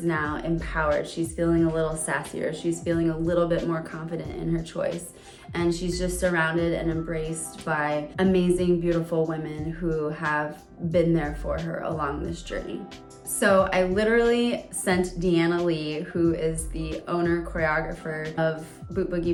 now empowered. She's feeling a little sassier, she's feeling a little bit more confident in her choice, and she's just surrounded and embraced by amazing, beautiful women who have been there for her along this journey. So I literally sent Deanna Lee, who is the owner choreographer of Boot Boogie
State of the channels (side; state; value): both; identical; correlation 1.00